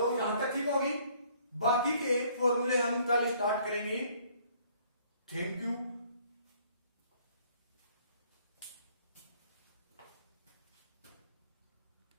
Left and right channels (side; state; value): both; inverted; correlation -0.61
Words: यहां तक ठीक होगी, बाकी के फॉर्मूले हम कल स्टार्ट करेंगे। Thank you.